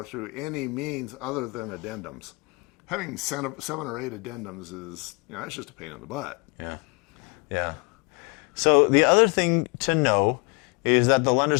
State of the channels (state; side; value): quieter; right; 29.8 dB